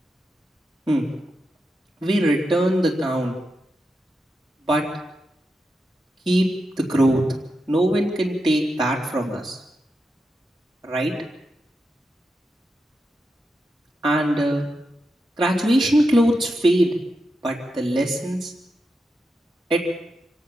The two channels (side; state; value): both; normal; correlation 0.87